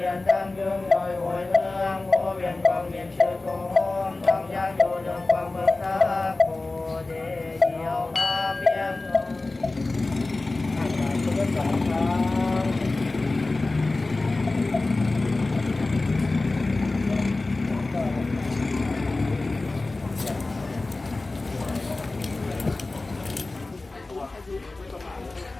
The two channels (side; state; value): right; quieter; 3.2 dB